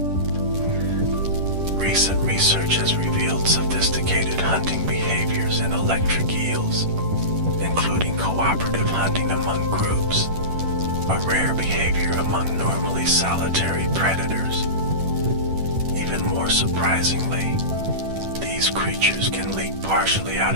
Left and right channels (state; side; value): late; left; 10 ms